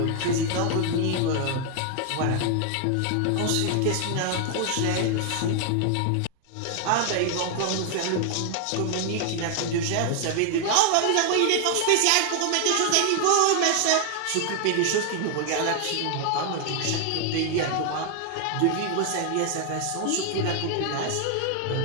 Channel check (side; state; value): both; different; correlation 0.00